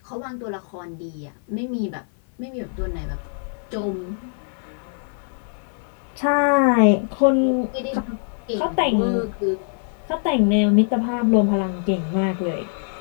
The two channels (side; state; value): right; silent; 63 dB below the other